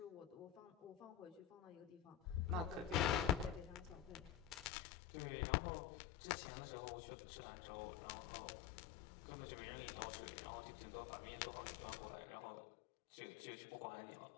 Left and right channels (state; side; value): drops out; right; at 4.7 s